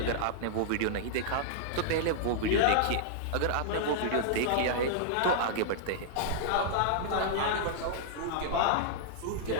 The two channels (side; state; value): both; different; correlation -0.01